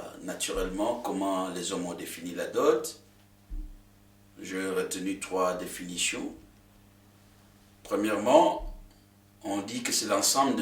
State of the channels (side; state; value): both; identical; correlation 1.00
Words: naturellement comment les hommes ont défini la dot, j'ai retenu 3 définitions. Premièrement, on dit que c'est l'ensemble